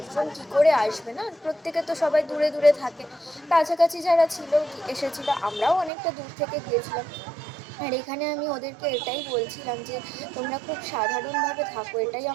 কী করে আসবে, না প্রত্যেকে তো সবাই দূরে দূরে থাকে। কাছাকাছি যারা ছিল এসেছিলো, আমরাও অনেকটা দূর থেকে গিয়েছিলাম। আর এখানে আমি ওদেরকে এটাই বলছিলাম যে তোমরা খুব সাধারণভাবে থাকো, এটাই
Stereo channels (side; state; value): left; drops out; at 5.9 s